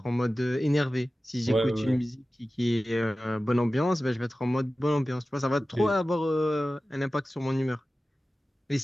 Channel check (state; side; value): normal; both; correlation 0.96